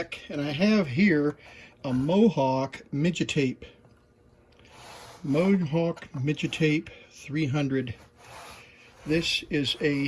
and I have here a Mohawk midget tape. Mohawk midget tape 300. This is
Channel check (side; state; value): both; identical; correlation 1.00